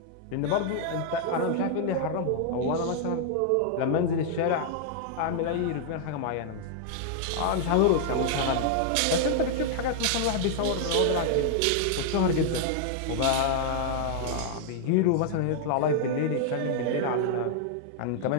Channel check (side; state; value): both; different; correlation -0.01